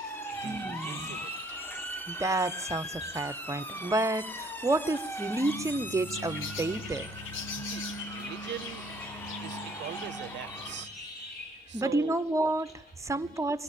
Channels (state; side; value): normal; both; correlation 0.63